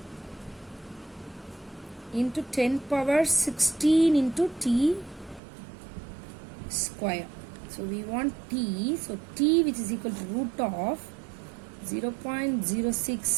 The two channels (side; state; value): left; drops out; at 5.4 s